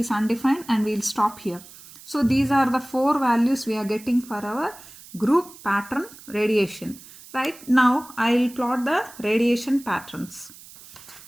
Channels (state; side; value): noise; right; hiss, 19 dB below the sound